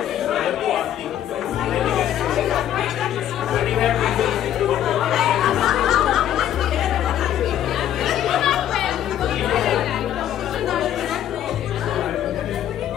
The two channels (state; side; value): quieter; right; 11.1 dB